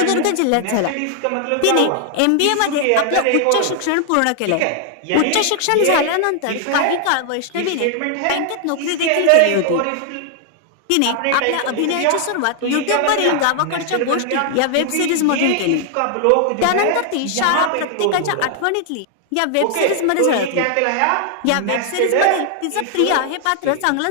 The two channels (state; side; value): different; both; correlation 0.00